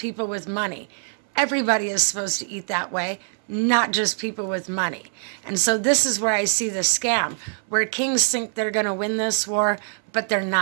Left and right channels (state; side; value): silent; left; 59 dB below the other